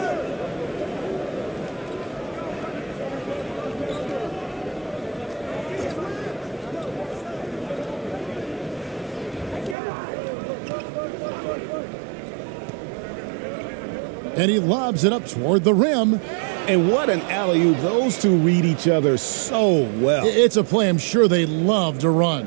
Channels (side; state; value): left; drops out; at 9.8 s